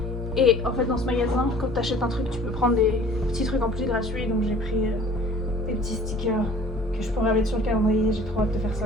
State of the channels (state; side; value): normal; both; correlation 0.49